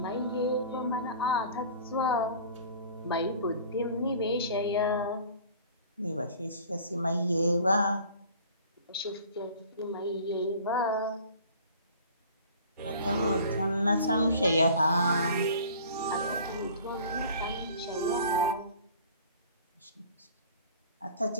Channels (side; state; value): both; inverted; correlation -0.46